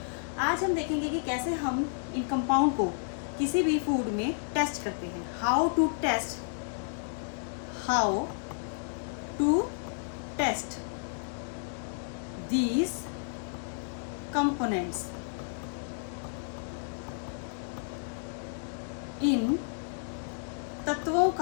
आज हम देखेंगे कि कैसे हम इन कंपाउंड को किसी भी फूड में टेस्ट करते हैं। How to test these components इन तत्वों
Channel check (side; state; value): right; silent; digital silence